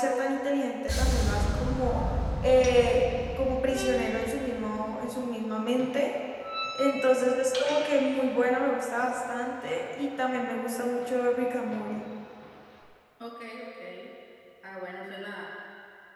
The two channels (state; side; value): identical; both; correlation 1.00